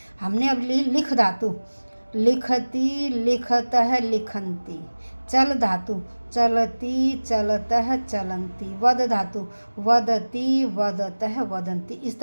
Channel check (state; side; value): inverted; both; correlation -1.00